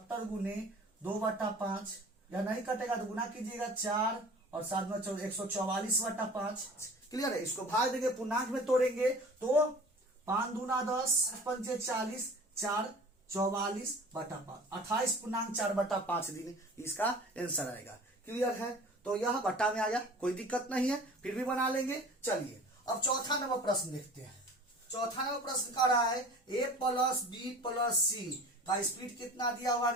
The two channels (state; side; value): normal; both; correlation 0.42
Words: गुने 2/5, या नहीं कटेगा तो गुना कीजिएगा 4 और 7 में 144/5। क्लियर है? इसको भाग देंगे, पूर्णांक में तोड़ेंगे तो 5 दूना 10, 5 40, 4 44/5, 28 पूर्णांक 4/5 दिन इसका आंसर आएगा। क्लियर है? तो यह बट्टा में आ गया, कोई दिक्कत नहीं है, फिर भी बना लेंगे। चलिए अब चौथा नंबर प्रश्न देखते हैं। चौथा नंबर प्रश्न कह रहा है a प्लस बी प्लस सी का स्पीड कितना दिया हुआ?